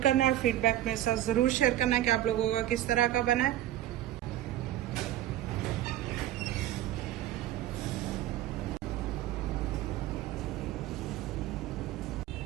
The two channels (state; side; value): quieter; left; 13.3 dB